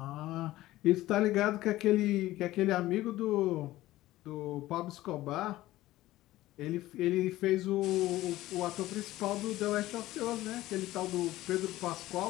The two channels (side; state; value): right; quieter; 16.3 dB